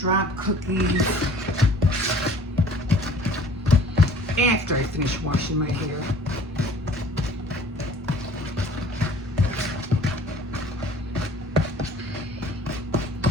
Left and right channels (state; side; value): normal; both; correlation 0.51